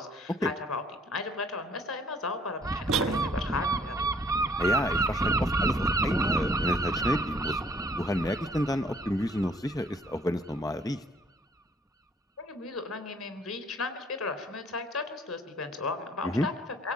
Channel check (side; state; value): both; normal; correlation 0.60